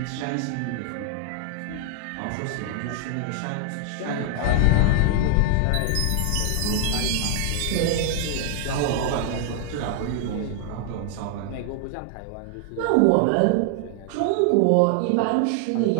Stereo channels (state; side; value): different; both; correlation 0.00